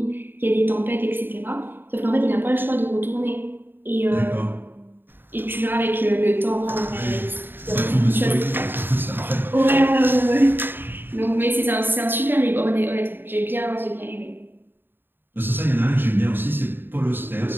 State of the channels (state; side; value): late; left; 0.097 ms